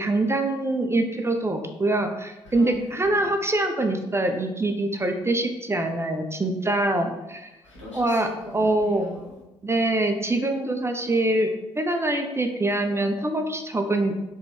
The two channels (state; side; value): normal; both; correlation 0.69